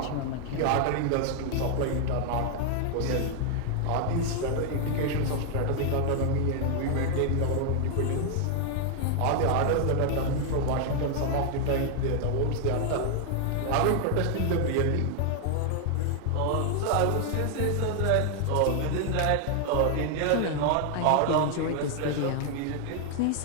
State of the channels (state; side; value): different; both; correlation 0.00